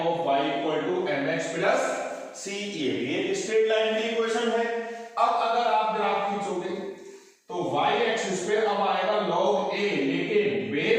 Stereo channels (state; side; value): identical; both; correlation 1.00